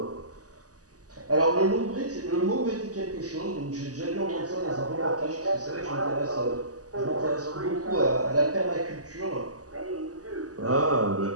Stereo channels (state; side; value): late; left; 0.67 ms